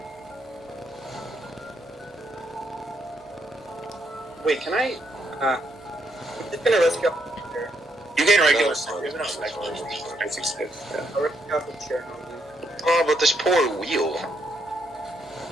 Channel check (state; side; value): normal; both; correlation 0.76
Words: Wait, can I? I'm just gonna rescue off the chair. You gain regular No, stuff. There's no spec. Yeah. I'll rescue off the chair. No, Oh, but this poor wheel.